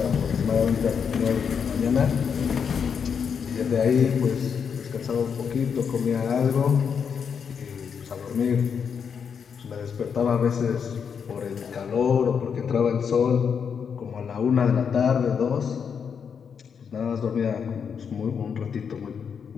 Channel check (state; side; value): quieter; right; 6.8 dB